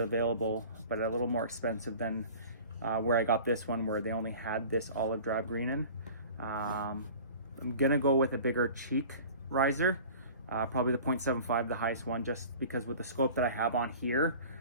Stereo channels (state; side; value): inverted; both; correlation -0.42